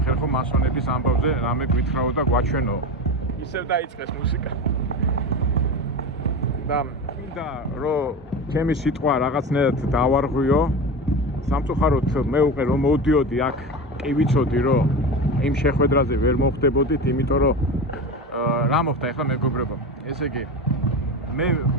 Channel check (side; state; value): both; normal; correlation 0.25